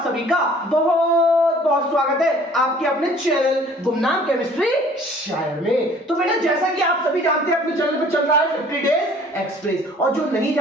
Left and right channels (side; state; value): both; normal; correlation 0.53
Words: सभी का बहुत बहुत स्वागत है आपके अपने चैनल गुमनाम केमिस्ट्री शायर में। तो बेटा जैसा कि आप सभी जानते हैं अपने चैनल पे चल रहा है 50 डेज एक्सप्रेस, और जो नहीं